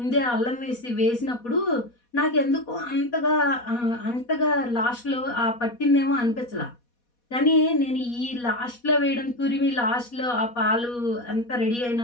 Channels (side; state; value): right; late; 4.2 ms